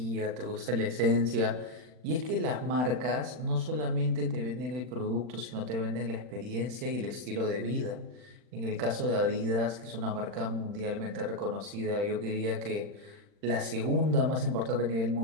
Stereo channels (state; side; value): late; left; 40 ms